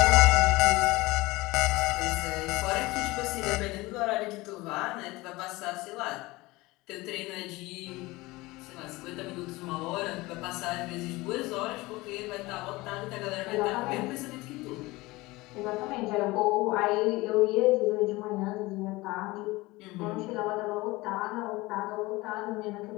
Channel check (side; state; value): right; quieter; 21.2 dB